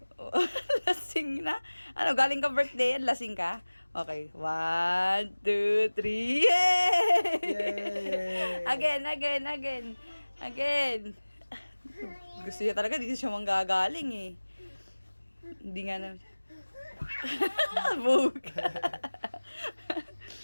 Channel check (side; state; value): both; inverted; correlation -1.00